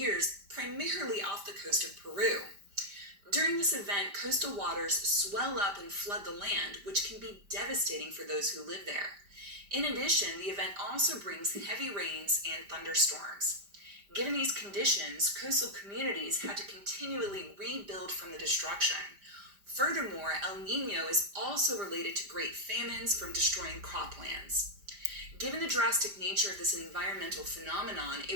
primarily off the coast of Peru. During this event, coastal waters swell up and flood the land, which can be devastating for those who live there. In addition, the event also brings heavy rains and thunderstorms. Given these conditions, coastal communities had to continually rebuild from the destruction. Furthermore, El Niño is also related to great famines from destroying croplands. Given the drastic nature of this environmental phenomenon,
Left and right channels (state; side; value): late; left; 5.0 ms